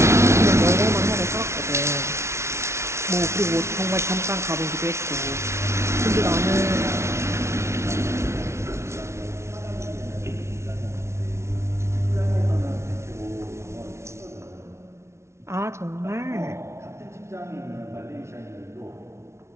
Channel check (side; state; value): left; late; 0.13 ms